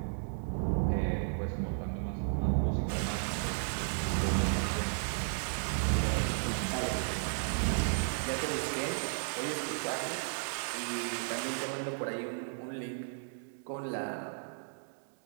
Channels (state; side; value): silent; left; digital silence